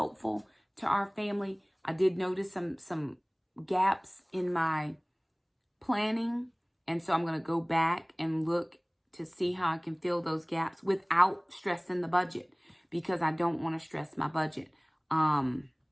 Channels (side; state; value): both; identical; correlation 1.00